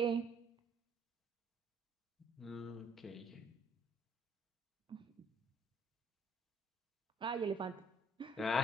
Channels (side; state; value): both; normal; correlation 0.64